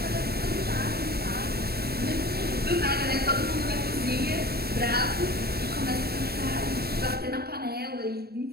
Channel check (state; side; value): late; left; 0.46 ms